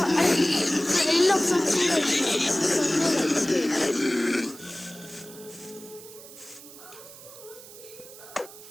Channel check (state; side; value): noise; right; hiss, 18 dB below the sound